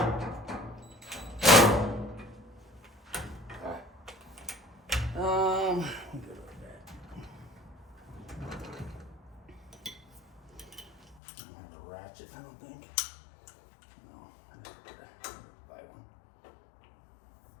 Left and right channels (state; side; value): drops out; right; at 11.2 s